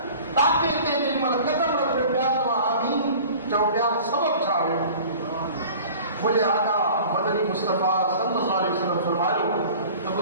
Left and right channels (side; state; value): both; inverted; correlation -0.43